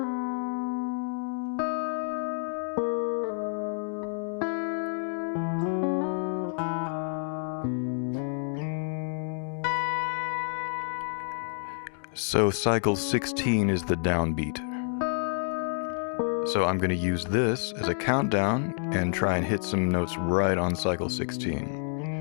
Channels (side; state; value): right; silent; 59 dB below the other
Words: So cycle 16 is the downbeat. So I'm going to use this as a countdown and try and hit some notes right on cycle